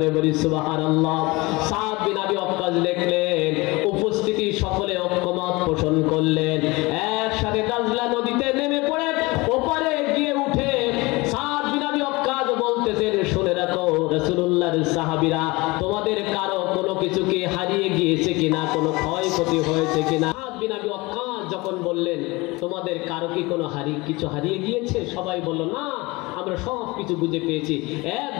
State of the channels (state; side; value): quieter; right; 23.4 dB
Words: বলি সুবহানাল্লাহ। সাদ বিন আবি ওয়াক্কাস দেখলেন উপস্থিতি সকলে ঐক্যমত পোষণ করলেন, একসাথে দাজলা নদীতে নেমে পড়ে ওপারে গিয়ে উঠে সাদ বিন আবি ওয়াক্কাস বলতেছেন, শুনে রাখো রাসূলুল্লাহর সাহাবীরা, তোমাদের কারো কোনো কিছু কি হারিয়ে গিয়েছে কিনা, কোনো ক্ষয়ক্ষতি হয়েছে কিনা? সাদ বিন আবি ওয়াক্কাস যখন বললেন তোমাদের কারো কি কোনো কিছু হারিয়ে গিয়েছে, সবাই বলল না, আমরা সব কিছু বুঝে পেয়েছি।